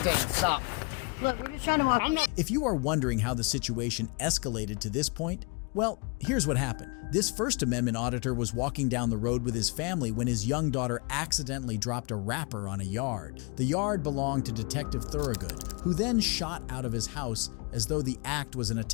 Stop. Look, we're just trying to walk. I'm not. If you are wondering how the situation escalated to this point, well, here's what happened. This First Amendment auditor was walking down the road with his family when his young daughter accidentally dropped a wrapper on a yard. The yard belonged to Detective Thorogood, who then shot out of his house as though the act was an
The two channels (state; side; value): quieter; right; 32.2 dB